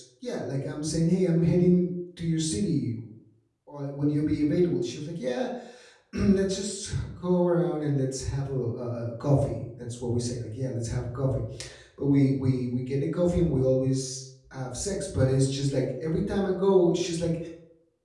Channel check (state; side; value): identical; both; correlation 1.00